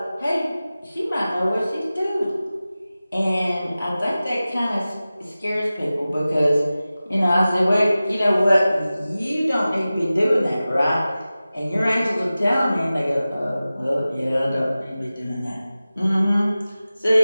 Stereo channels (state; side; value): inverted; both; correlation -0.96